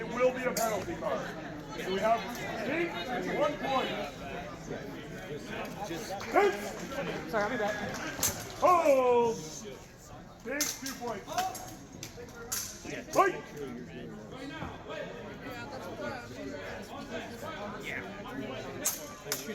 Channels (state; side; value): identical; both; correlation 1.00